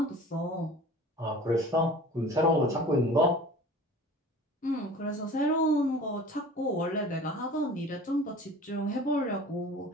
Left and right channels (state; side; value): normal; both; correlation 0.42